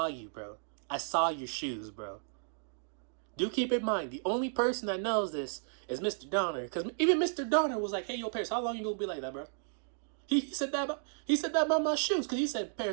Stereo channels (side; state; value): left; silent; digital silence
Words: you, bro. I saw your shoes, bro. Do keep in mind, the only person that knows this is Mr. Donner, because even Mr. Donner was like, hey, yo, Paris, how long you gonna be like that, bro? He said that about my shoes, because he said,